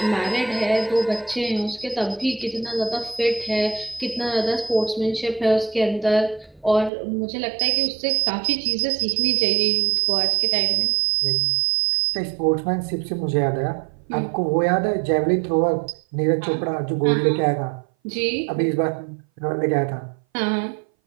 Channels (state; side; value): drops out; left; at 6.9 s